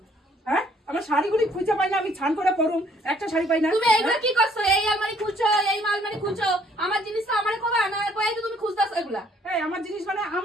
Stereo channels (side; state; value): both; normal; correlation 0.63